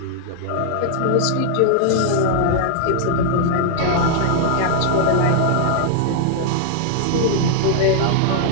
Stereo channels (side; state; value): both; different; correlation 0.00